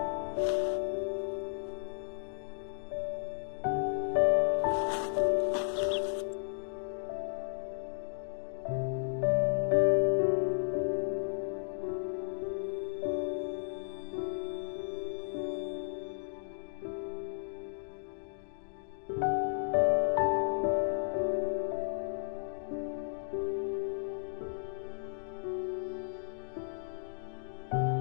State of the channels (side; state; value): right; silent; digital silence